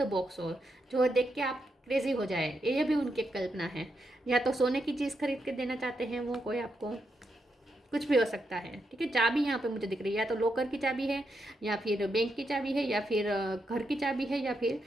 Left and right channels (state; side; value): normal; both; correlation 0.83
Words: बॉक्स हो, जो देख के आप क्रेजी हो जाए, ये भी उनकी कल्पना है। या तो सोने की चीज़ खरीद के देना चाहते हैं वो कोई आपको, कुछ भी हो सकता है। ठीक है, चाबी यहाँ पे मुझे दिख रही है, या तो लॉकर की चाबी है, या फिर बैंक की चाबी है, या फिर घर की चाबी है, या फिर